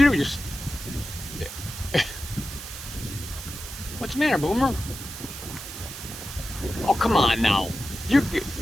Just what's the matter, Boomer? Oh, come on now. You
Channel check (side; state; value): right; noise; hiss, 10 dB below the sound